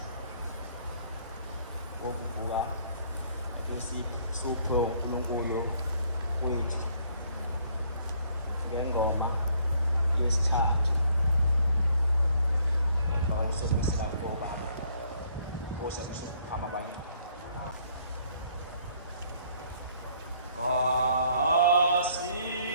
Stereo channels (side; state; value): both; inverted; correlation -0.64